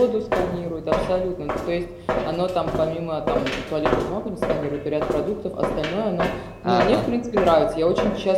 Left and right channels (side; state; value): both; identical; correlation 1.00